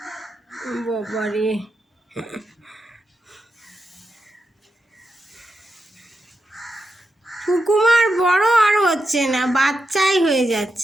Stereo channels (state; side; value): normal; both; correlation 0.87